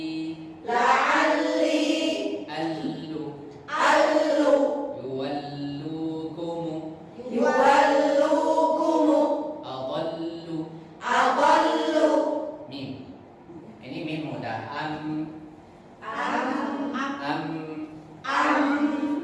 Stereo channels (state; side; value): identical; both; correlation 1.00